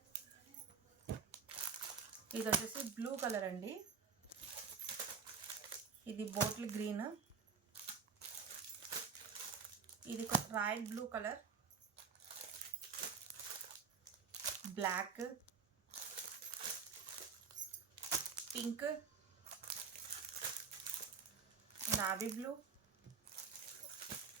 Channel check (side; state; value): left; quieter; 5.9 dB